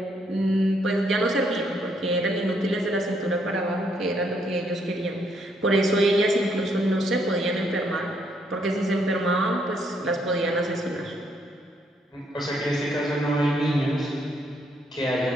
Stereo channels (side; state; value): both; normal; correlation 0.72